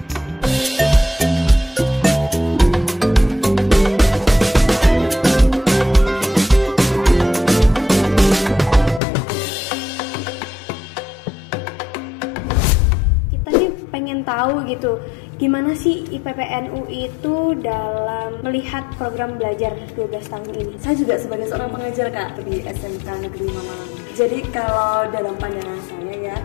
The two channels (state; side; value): drops out; right; at 9.0 s